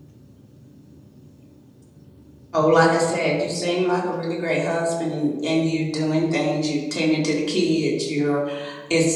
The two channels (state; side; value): identical; both; correlation 1.00